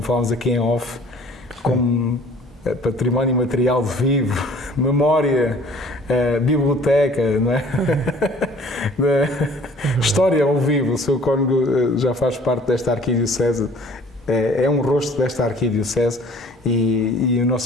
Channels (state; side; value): normal; both; correlation 0.52